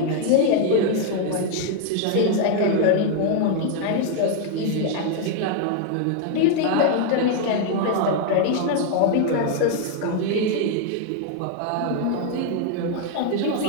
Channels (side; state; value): both; different; correlation 0.00